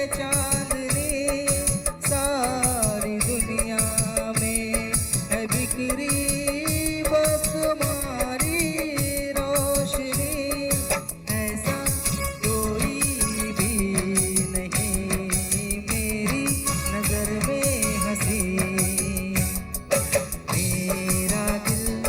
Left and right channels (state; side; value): identical; both; correlation 1.00